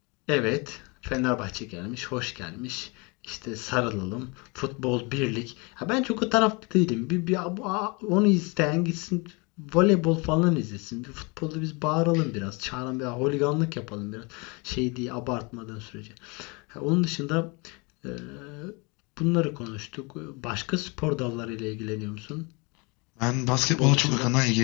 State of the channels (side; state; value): right; quieter; 29.3 dB